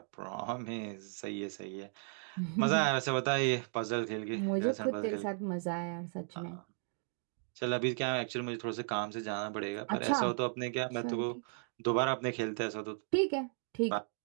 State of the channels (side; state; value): left; silent; 54 dB below the other